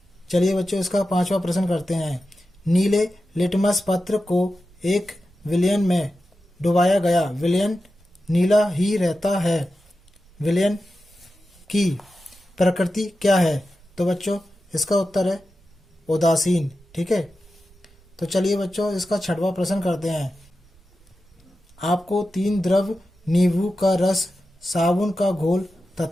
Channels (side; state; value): right; noise; rumble, 29 dB below the sound